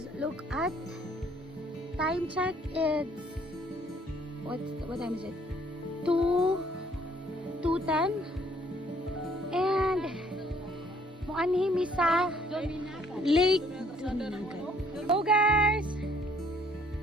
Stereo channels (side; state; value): both; normal; correlation 0.62